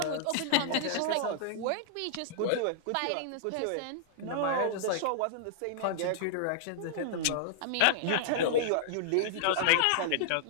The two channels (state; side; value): different; both; correlation -0.02